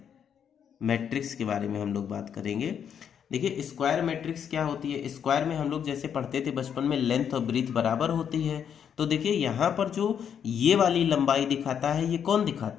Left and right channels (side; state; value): right; quieter; 8.2 dB